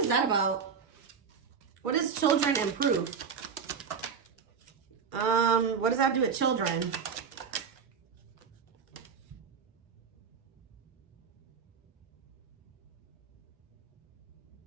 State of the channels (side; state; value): left; quieter; 6.3 dB